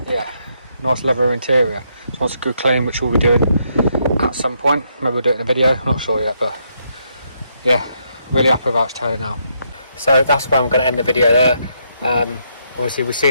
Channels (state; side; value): inverted; both; correlation -0.76